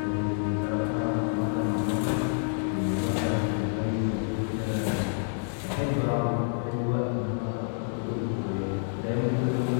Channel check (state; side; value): silent; right; digital silence